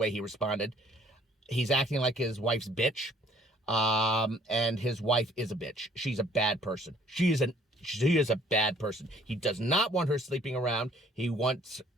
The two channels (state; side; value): normal; both; correlation 0.60